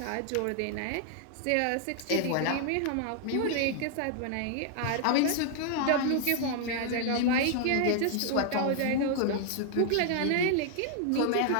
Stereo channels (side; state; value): both; different; correlation 0.00